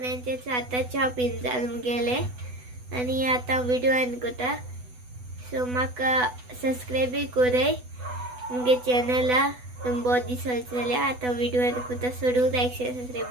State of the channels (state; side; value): late; left; 8.1 ms